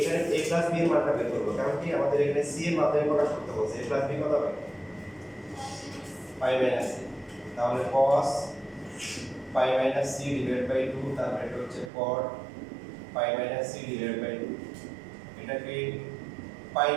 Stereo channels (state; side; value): drops out; left; at 11.9 s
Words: a plus b এর মানটা বের করব কারণ কি আমাদের এখানে c এর মাধ্যমে প্রকাশ করতে বলছে a plus b কত হবে pi minus c তাহলে cos pi minus c divided by 2 তারপরে এটা হচ্ছে cot pi minus c divided by 2 এটাকে pi